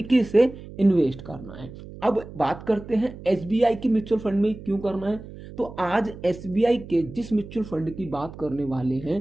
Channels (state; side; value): noise; right; hum, 15 dB below the sound